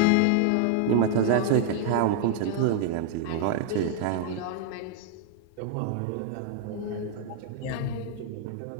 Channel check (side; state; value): both; different; correlation 0.00